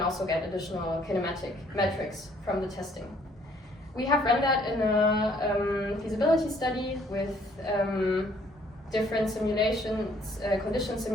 also get additional kinematic metrics from the testing. We have run that in a feasibility study with different simulations, conditions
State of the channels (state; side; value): normal; both; correlation 0.63